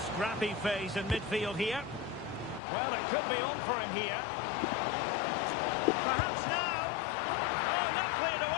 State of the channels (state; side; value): drops out; right; at 2.6 s